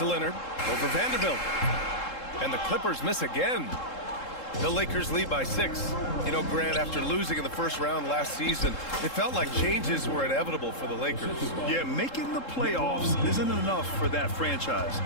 Leonard. Over Vanderbilt. And the Clippers miss again. The Lakers lead by 6. You know, Grant, after losing in the first round last season, it felt like changes were inevitable for the Lakers. Yeah, making the playoffs isn't enough for that franchise.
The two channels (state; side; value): late; right; 3.7 ms